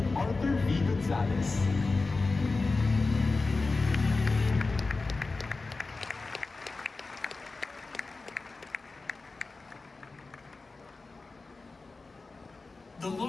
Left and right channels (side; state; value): right; quieter; 3.7 dB